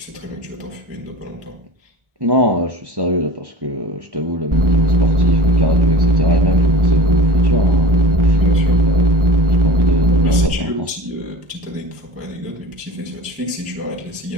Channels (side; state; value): left; late; 1.4 ms